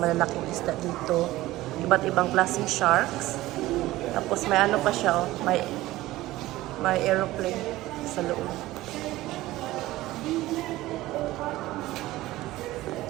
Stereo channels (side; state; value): left; quieter; 17.1 dB